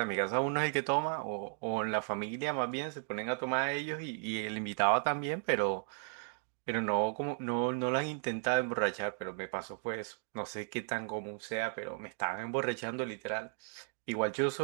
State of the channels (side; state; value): left; silent; 54 dB below the other